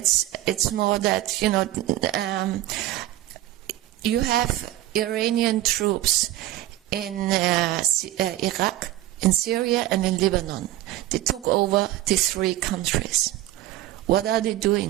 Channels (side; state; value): left; quieter; 14.7 dB